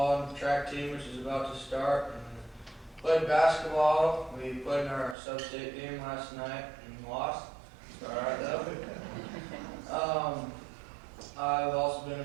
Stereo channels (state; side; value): drops out; left; at 5.2 s